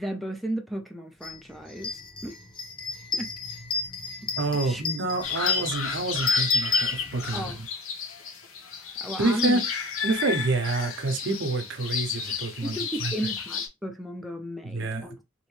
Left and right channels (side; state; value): both; normal; correlation 0.41